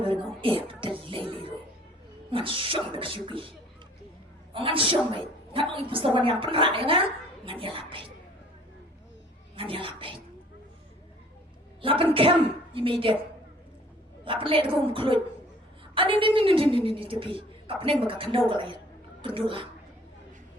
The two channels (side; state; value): both; normal; correlation 0.54